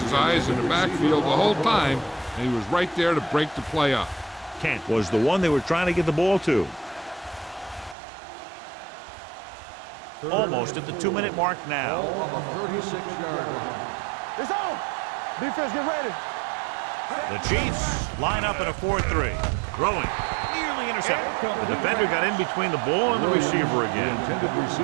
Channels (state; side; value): drops out; left; at 8.0 s